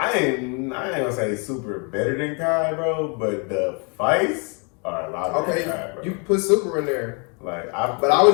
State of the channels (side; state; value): right; quieter; 35.6 dB